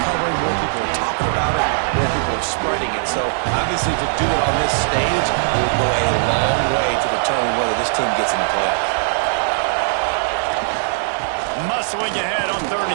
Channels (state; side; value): silent; left; 66 dB below the other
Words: covering, more people are talking about it, more people are spreading it. So, obviously, to do it on this stage will go a long way to determine whether this team gets in the playoffs. Muscling ahead on 3rd